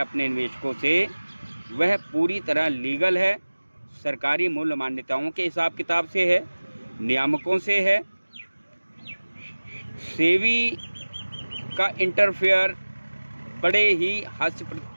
निवेशकों से, वह पूरी तरह लीगल है, सरकारी मूल्य मान्यताओं के हिसाब किताब से है, नियामकों से है। सेवी का इंटरफेयर बड़े ही हास्य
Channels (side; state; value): both; inverted; correlation -1.00